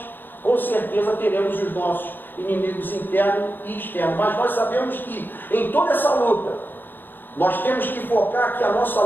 com certeza, teremos os nossos inimigos internos e externos. Mas nós sabemos que em toda essa luta, nós temos que focar que a nossa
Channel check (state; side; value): late; right; 0.094 ms